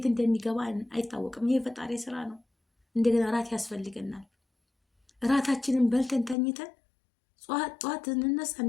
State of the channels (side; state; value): right; drops out; at 6.4 s